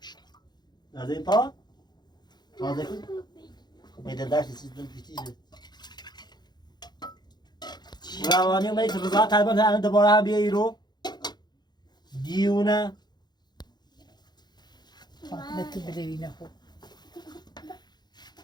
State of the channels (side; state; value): right; late; 0.21 ms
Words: از این پا تازه کن میده داشت سیستم پیچیده روانی اومدی که رضا طلبان الان دوباره هم بیایی رو دیونه نتو بدوینه خوب